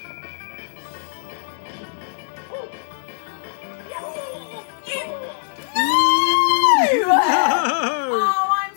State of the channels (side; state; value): right; silent; digital silence